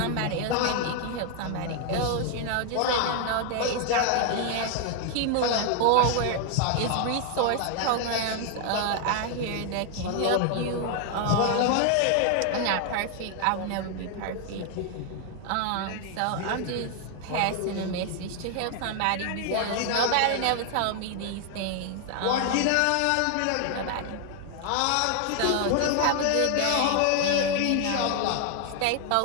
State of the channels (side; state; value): both; different; correlation 0.00